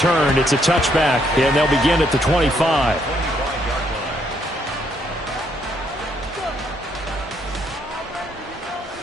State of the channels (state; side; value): normal; both; correlation 0.72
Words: It's a touchback, and they'll begin at the 25.